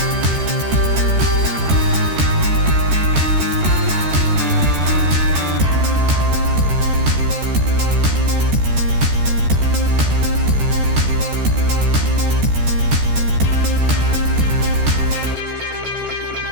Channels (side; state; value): left; late; 13 ms